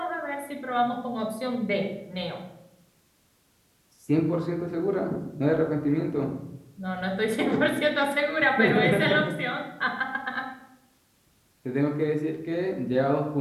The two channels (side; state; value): both; identical; correlation 1.00